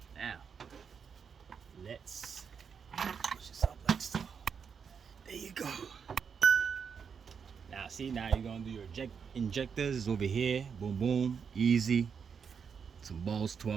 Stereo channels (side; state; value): left; quieter; 6.5 dB